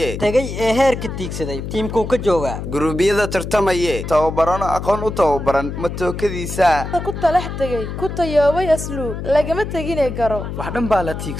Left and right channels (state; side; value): noise; left; hum, 6 dB below the sound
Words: tagay ee heerka tiigsaday tiimkuu ka jooga guruubiyada tartamaye tababarano aqoon u tababaran matookadiisa ku talax tagay ku tayoobay asluub lagama taginay garo wax dhan baa la